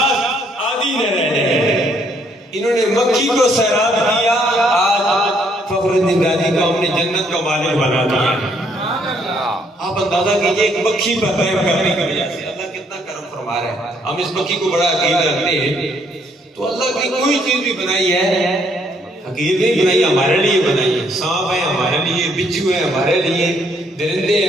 نہ رہے. انہوں نے مکھی کو سیراب کیا. آج فخر الدین رازی کو ہم نے جنت کا مالک بنا دیا. آپ اندازہ کیجئے ایک مکھی پر قائم کرنے کی وجہ سے اللہ کتنا کرم فرما رہے ہیں. ہم اس مکھی کو بڑا عقید رکھتے ہیں. تو اللہ کی کوئی چیز بھی بنائی ہے حقیقت نہیں بنائی، ہمارے لیے بنائی ہے. سانپ ہے ہمارے لیے، بچھو ہے ہمارے لیے، درندے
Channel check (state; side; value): normal; both; correlation 0.69